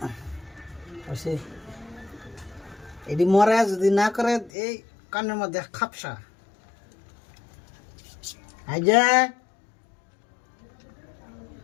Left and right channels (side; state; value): right; drops out; at 4.5 s